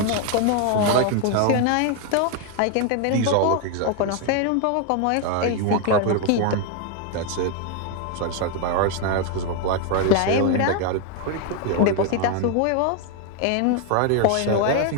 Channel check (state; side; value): different; both; correlation 0.01